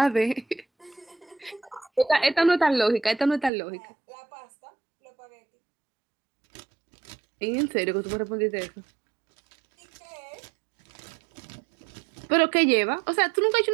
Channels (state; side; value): drops out; left; at 3.5 s